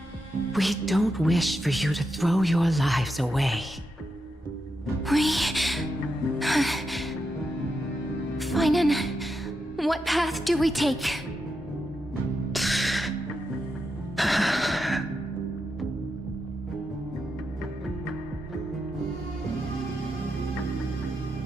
We don't wish for you to throw your lives away. Finan, what path do we take?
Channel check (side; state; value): both; normal; correlation 0.85